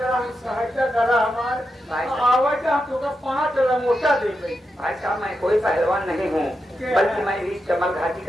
सहायता करा, हमारे आवाज आपको 5 लंगोटा दे गई। भाई साहब, मैं कोई पहलवान नहीं हूँ, बल्कि मैं इस चमल घाटी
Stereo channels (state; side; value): normal; both; correlation 0.87